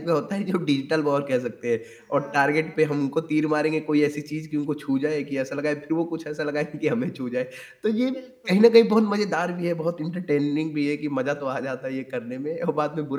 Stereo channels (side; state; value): both; identical; correlation 1.00